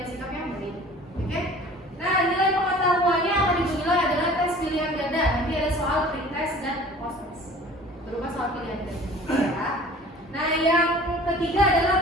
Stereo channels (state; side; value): normal; both; correlation 0.46